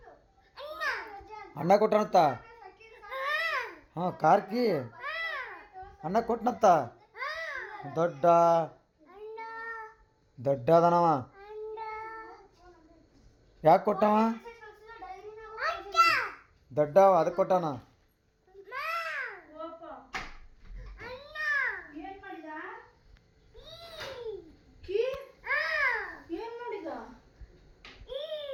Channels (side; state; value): both; identical; correlation 1.00